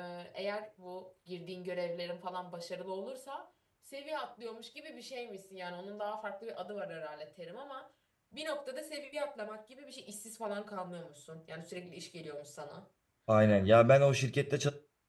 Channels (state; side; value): identical; both; correlation 1.00